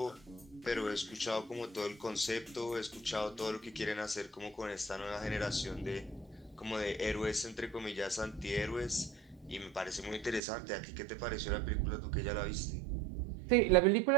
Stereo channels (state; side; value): drops out; left; at 10.4 s